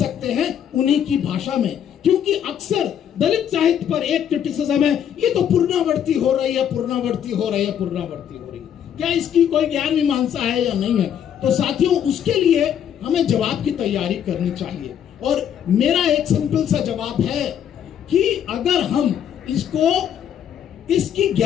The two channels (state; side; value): quieter; right; 9.3 dB